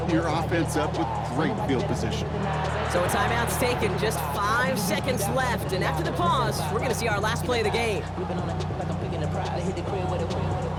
your offense up with great field position. So a timeout's taken, just 5 seconds left, and after the pause, we're going to see our last play of the game.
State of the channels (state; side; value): identical; both; correlation 1.00